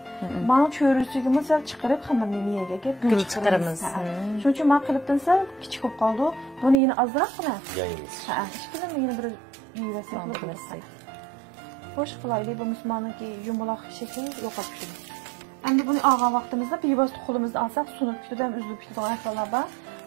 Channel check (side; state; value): left; drops out; at 6.8 s